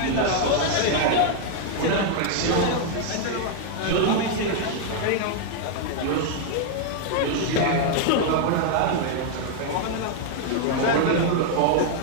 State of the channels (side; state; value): both; different; correlation 0.00